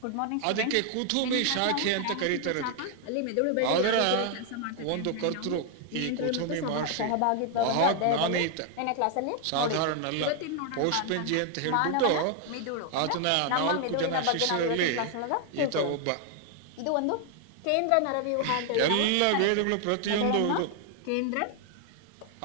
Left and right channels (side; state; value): both; different; correlation 0.00